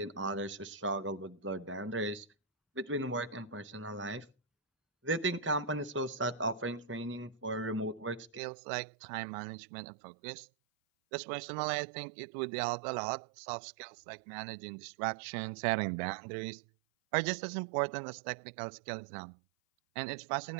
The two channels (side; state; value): left; drops out; at 8.4 s